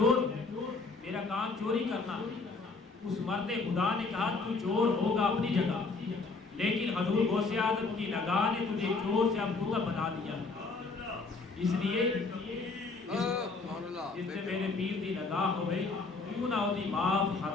ہوں، میرا کام چوری کرنا۔ اس مرد خدا نے کہا تو چور ہوگا اپنی جگہ، لیکن حضور غوث اعظم کی نگاہ نے تجھے چور سے اب کتب بنا دیا، اس لیے جس نے میرے پیر دی نگاہ ہوئے کیوں نہ ہوتی معاف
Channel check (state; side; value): quieter; right; 4.0 dB